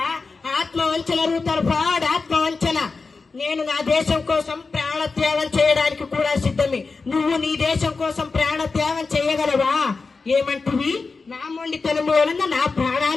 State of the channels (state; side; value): quieter; right; 4.3 dB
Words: ఆత్మవంచన రూతర్ ఫ్రాడ్, ఆత్మవంచన. నేను నా దేశం కోసం ప్రాణత్యాగం చేయడానికి కూడా సిద్ధమే. నువ్వు నీ దేశం కోసం ప్రాణత్యాగం చేయగలవా? ఏమంటివి? నా మొండితనం వలన నా